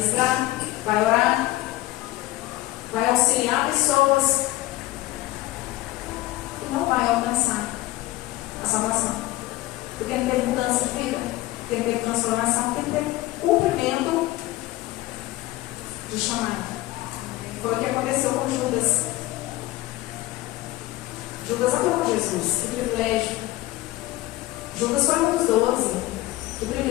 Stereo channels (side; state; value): right; quieter; 17.6 dB